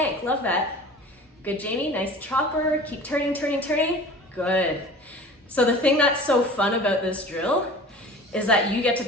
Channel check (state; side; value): normal; both; correlation 0.41